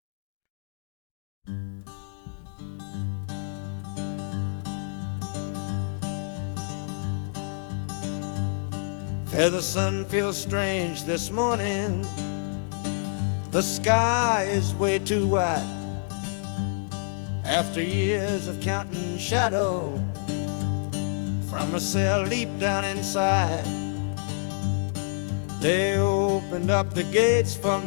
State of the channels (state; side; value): silent; right; digital silence